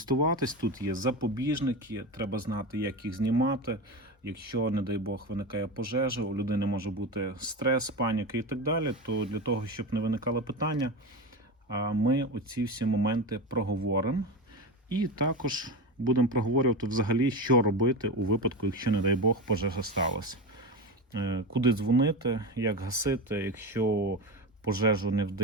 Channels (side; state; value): both; normal; correlation 0.21